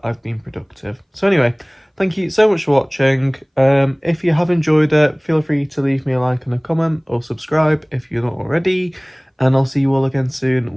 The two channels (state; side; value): identical; both; correlation 1.00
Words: I've been productive. So anyway, thank you so much for watching. If you have enjoyed it, feel free to leave me a like and a comment, or subscribe if you're not already. And I'll see you all again soon